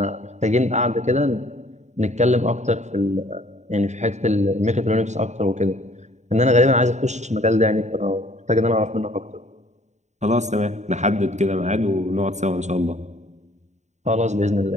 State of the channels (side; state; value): left; late; 0.34 ms